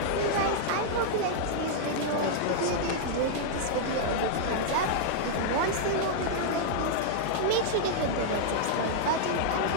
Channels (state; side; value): different; both; correlation -0.02